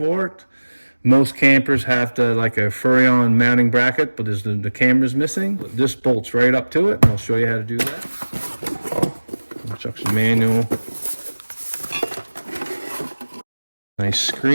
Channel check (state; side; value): inverted; both; correlation -1.00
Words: it. Most campers have like a Furrion mounting bracket, but the camera's missing. This bolts right up to it, and I'll show you how to do that. Instruction manual. Nice